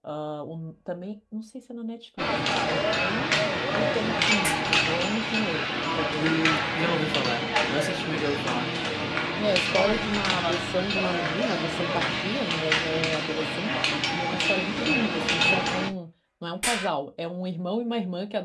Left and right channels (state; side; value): identical; both; correlation 1.00